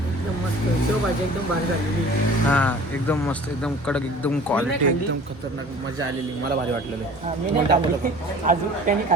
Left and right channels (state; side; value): normal; both; correlation 0.45